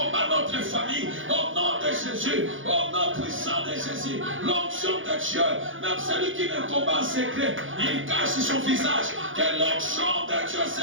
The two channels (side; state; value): left; late; 0.57 ms